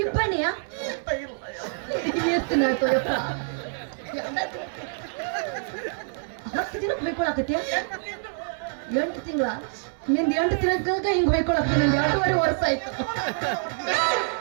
ಇಬ್ಬನಿಯ ಎಷ್ಟು ನಾಯ್ತು ಯಪ್ಪ 10 ದಿನಕ್ಕೆ ಹೊಯ್ಕೊಳಕತ್ಯ 8 ತಿಂಗಳ ನಿಂದ 8 ತಿಂಗಳಾಗ ಹಿಂಗ್ ಹೊಯ್ಕೊಳಕ ನಿಂದ 2.5 ವರ್ಷ ಆಯ್ತು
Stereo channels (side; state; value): left; silent; 61 dB below the other